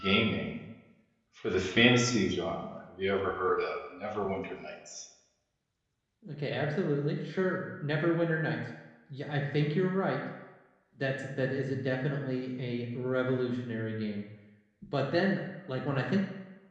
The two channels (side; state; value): both; identical; correlation 1.00